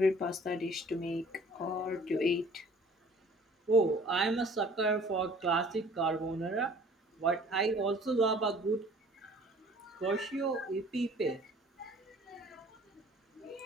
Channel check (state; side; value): normal; both; correlation 0.53